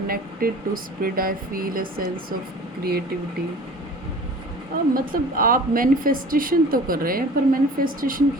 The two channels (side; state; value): both; normal; correlation 0.44